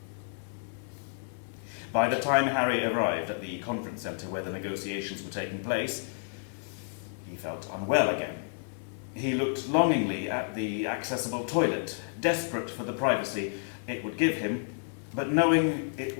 By the time Harry arrived at the conference centre where the negotiations were taking place, he felt unwell again. He looked longingly at the accessible toilet, desperate for the privacy it would give him, but knowing it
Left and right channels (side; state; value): right; silent; 57 dB below the other